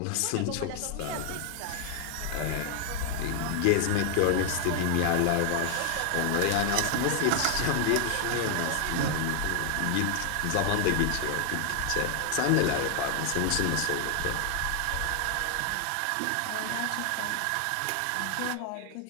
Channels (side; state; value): both; different; correlation 0.00